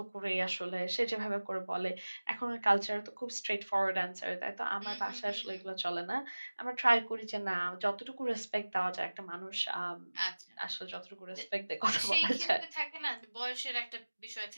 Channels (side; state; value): both; inverted; correlation -1.00